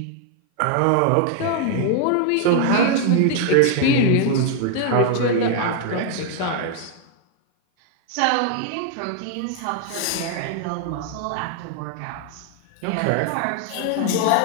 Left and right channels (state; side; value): different; both; correlation 0.00